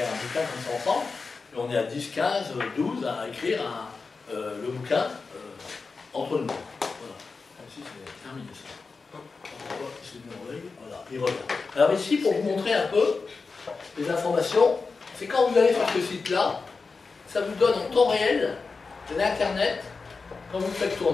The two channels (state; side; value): quieter; right; 4.4 dB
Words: un bouquin comme ça ensemble. Et on est à 10, 15, 12 à écrire le bouquin entre nous. Voilà. Ici, c'est terminé ça. Voilà, il revient. Alors ici, pour vous montrer un peu les informations, c'est quand vous allez sur ce site-là, ça vous donne en temps réel l'Internet, quand vous le faites